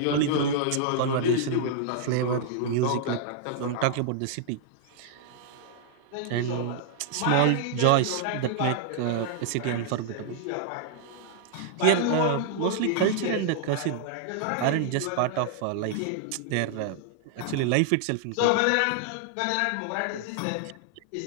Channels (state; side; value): different; both; correlation -0.01